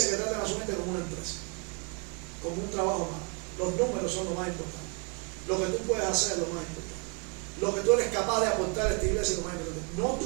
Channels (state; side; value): quieter; left; 33.6 dB